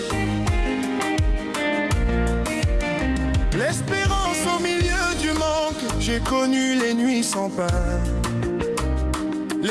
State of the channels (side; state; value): both; identical; correlation 1.00